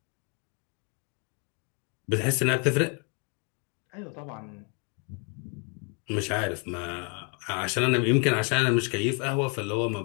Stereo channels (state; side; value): quieter; right; 37.3 dB